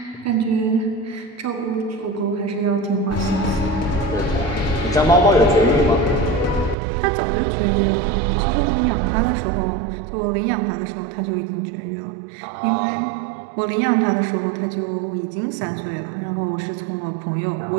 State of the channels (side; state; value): left; drops out; at 6.8 s